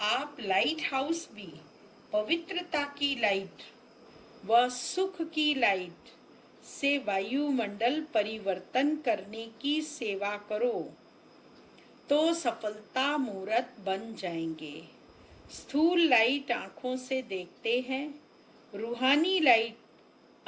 आप लाइट हाउस भी पवित्रता की लाइट व सुख की लाइट से वायुमंडल परिवर्तन करने की सेवा करो तो सफलता मूर्त बन जाएंगे। स्थूल लाइट आंखों से देखते हैं, रूहानी लाइट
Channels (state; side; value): identical; both; correlation 1.00